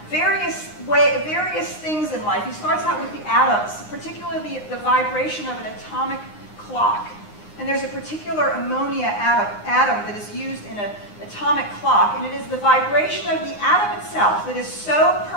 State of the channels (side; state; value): right; late; 9.7 ms